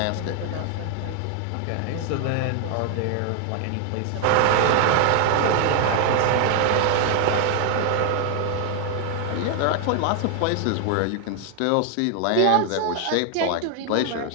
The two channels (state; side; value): different; both; correlation 0.00